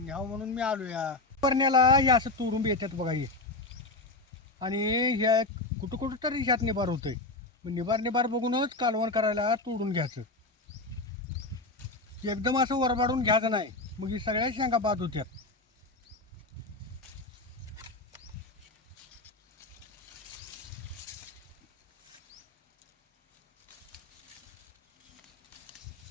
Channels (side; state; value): right; quieter; 3.1 dB